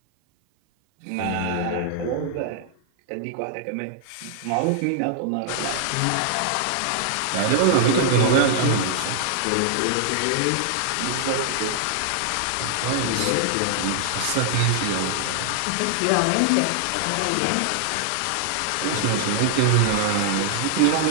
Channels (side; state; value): both; different; correlation 0.00